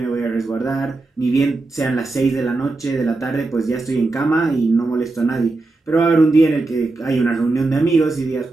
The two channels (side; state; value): left; quieter; 3.3 dB